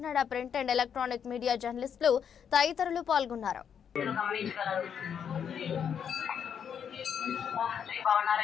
print and electronic media జర్నలిస్టులు తదితరులు పాల్గొన్నారు.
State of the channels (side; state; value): right; quieter; 7.9 dB